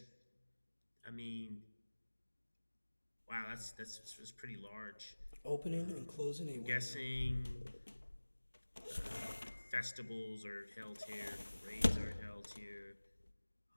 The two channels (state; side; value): inverted; both; correlation -1.00